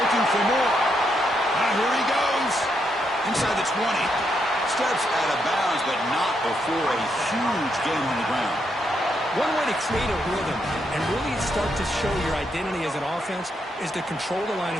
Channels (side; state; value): both; normal; correlation 0.79